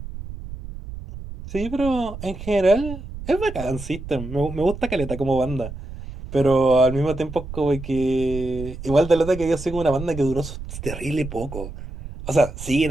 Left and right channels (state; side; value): noise; right; rumble, 10 dB below the sound